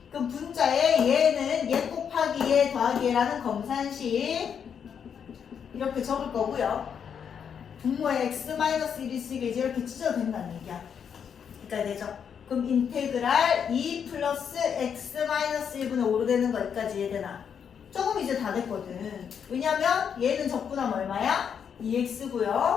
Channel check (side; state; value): right; quieter; 7.5 dB